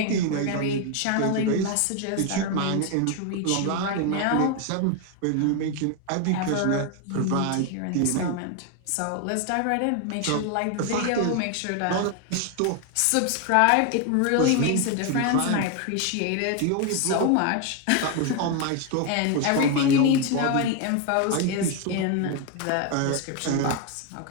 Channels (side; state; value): both; different; correlation 0.01